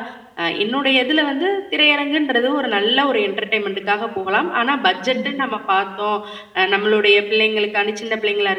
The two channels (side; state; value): both; identical; correlation 1.00